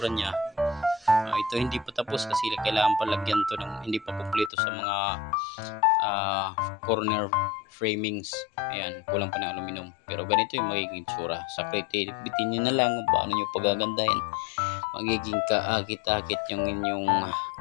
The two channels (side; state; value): right; drops out; at 4.5 s